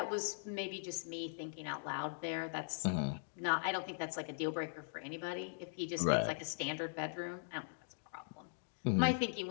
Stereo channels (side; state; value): right; silent; digital silence